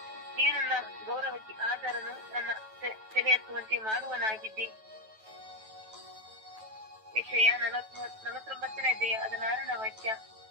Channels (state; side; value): late; left; 9.2 ms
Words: ನೀನು ನನ್ನ ಗೌರವಕ್ಕೆ ಆಧಾರನು, ನನ್ನ ತಲೆ ಎತ್ತುವಂತೆ ಮಾಡುವನಾಗಿದ್ದಿ. ಯೆಶಾಯ 49:16 ವಾಕ್ಯ.